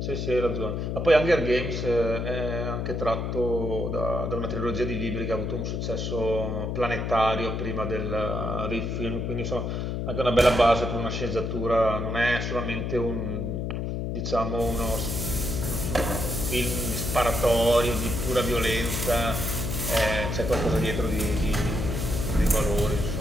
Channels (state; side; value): noise; left; hum, 2 dB below the sound